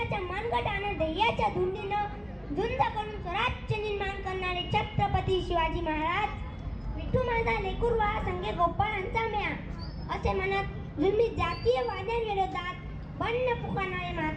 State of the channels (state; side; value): identical; both; correlation 1.00